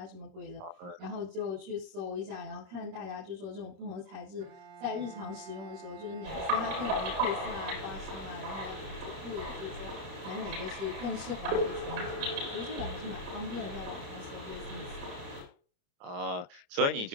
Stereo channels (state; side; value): late; left; 28 ms